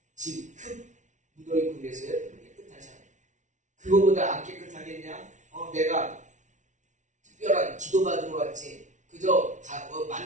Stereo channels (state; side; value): late; left; 0.36 ms